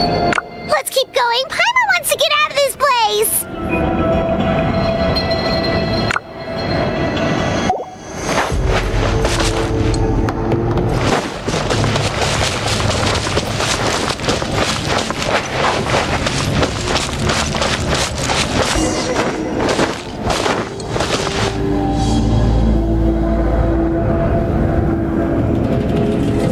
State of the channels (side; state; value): both; identical; correlation 1.00